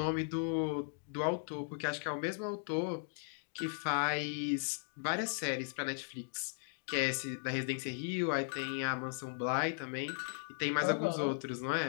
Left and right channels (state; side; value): silent; right; digital silence